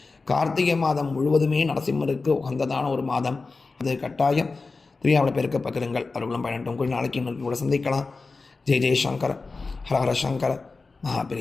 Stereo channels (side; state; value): right; quieter; 4.0 dB